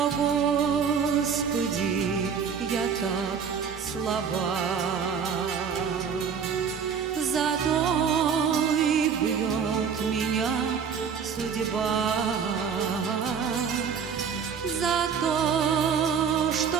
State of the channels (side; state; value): left; quieter; 6.7 dB